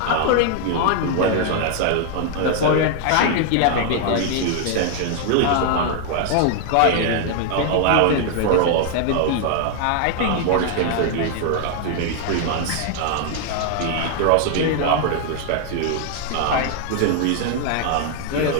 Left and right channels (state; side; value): different; both; correlation 0.00